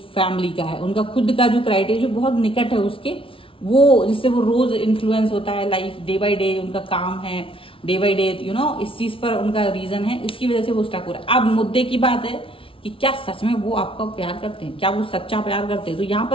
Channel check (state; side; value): late; right; 0.26 ms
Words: फैमिली का है, उनका खुद का जो क्राइटेरिया जो बहुत निकट है उसके, वो जिससे वो रोज इन्फ्लुएंस होता है लाइफ डे बाय डे, उनका काम है डे बाय डे, इस चीज पर उनका रीजन है, इसकी वजह से वो स्टक हो रहा है। अब मुद्दे की बात है कि क्या सच में वो आपका प्यार करते हैं, क्या वो सच्चा प्यार करते हैं। तो यहाँ